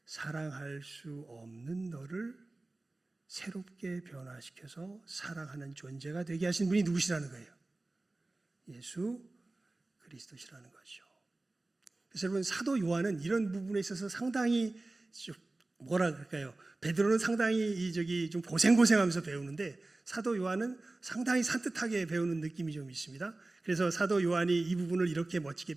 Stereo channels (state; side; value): quieter; left; 3.0 dB